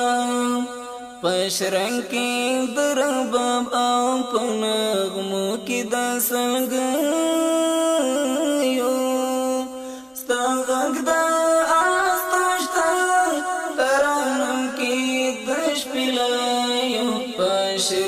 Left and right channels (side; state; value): both; identical; correlation 1.00